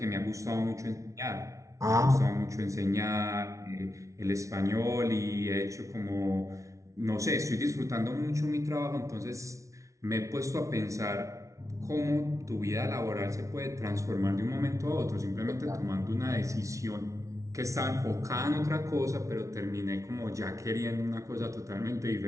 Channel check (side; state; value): left; late; 0.15 ms